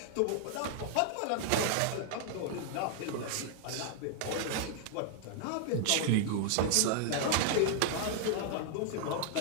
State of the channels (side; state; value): both; different; correlation 0.00